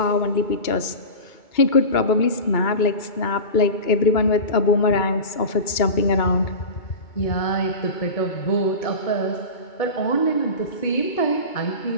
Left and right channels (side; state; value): right; late; 2.2 ms